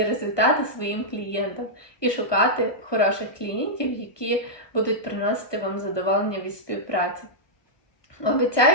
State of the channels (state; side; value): late; right; 1.2 ms